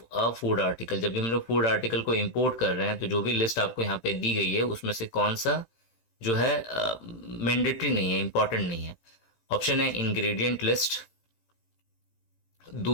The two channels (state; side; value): late; right; 16 ms